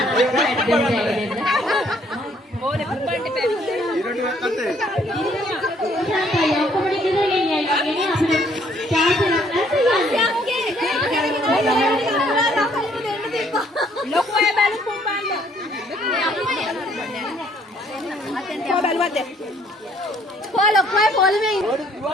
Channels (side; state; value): both; normal; correlation 0.64